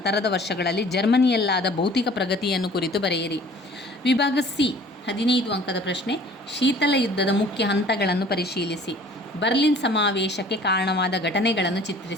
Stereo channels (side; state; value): both; normal; correlation 0.50